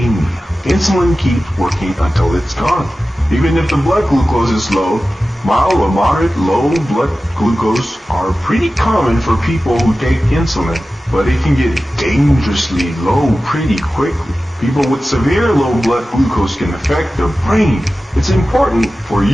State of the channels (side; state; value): both; normal; correlation 0.95